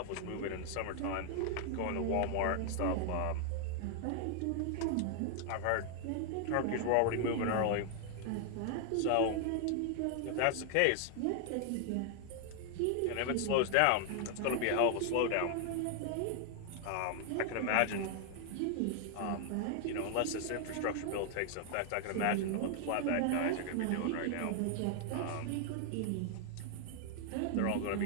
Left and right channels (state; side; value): different; both; correlation 0.00